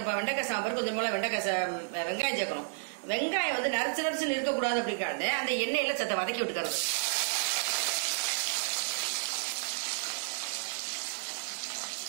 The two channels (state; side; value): silent; left; 56 dB below the other